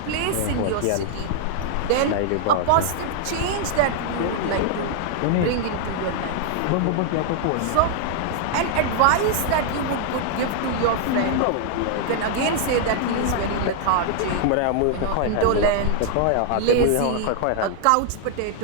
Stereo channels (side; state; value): both; different; correlation 0.00